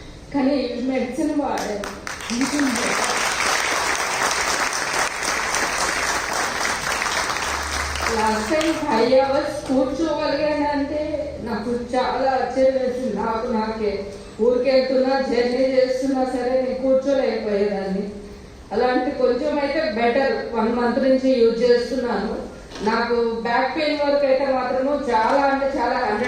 కానీ మెడిసిన్ వాడాను. లాస్ట్ టైం 5 hours కూర్చోగలిగానంటే నాకు చాలా ఆశ్చర్యం వేసింది. నాకే ఊరికెళ్తున్నా, జర్నీ చేస్తున్నా సరే నేను కూర్చోలేకపోయేదాన్ని. అలాంటి కొంచెం అయితే బెటర్ 1 month నుంచి యూజ్ చేస్తున్నాను. నాకు బ్యాక్ పెయిన్ వరకు అయితే మాత్రము చాలా అంటే చాలా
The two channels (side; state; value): both; identical; correlation 1.00